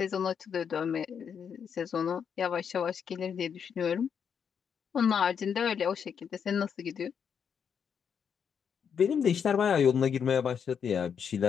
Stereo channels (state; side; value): quieter; right; 7.3 dB